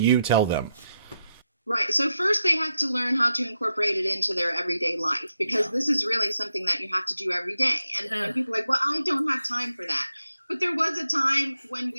tell them? Right. So first they have to learn how to incorporate it into their everyday life, because this is really something that you have to do every day. And people are like, well, I don't have time for that. But there was a time when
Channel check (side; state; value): both; inverted; correlation -0.85